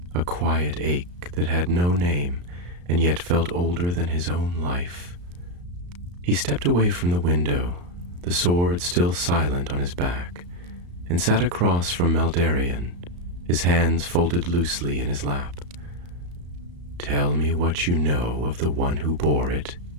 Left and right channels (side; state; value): left; late; 34 ms